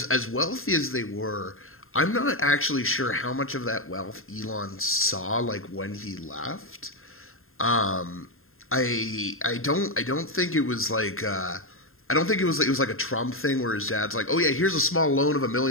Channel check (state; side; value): late; right; 0.61 ms